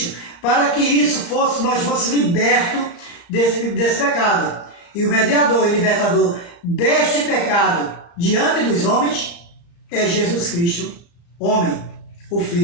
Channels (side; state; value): right; late; 35 ms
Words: para que nós fôssemos libertos desse pecado. E o mediador e libertador deste pecado diante dos homens é Jesus Cristo, homem, o